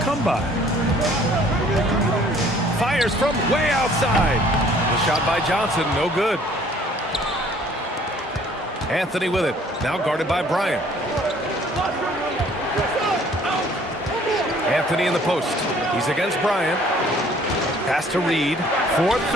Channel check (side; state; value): both; normal; correlation 0.57